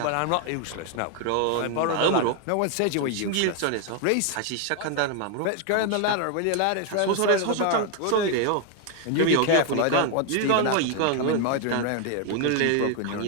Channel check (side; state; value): both; different; correlation 0.00